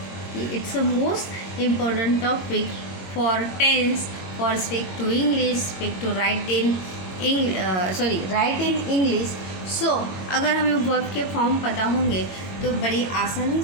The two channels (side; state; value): right; late; 21 ms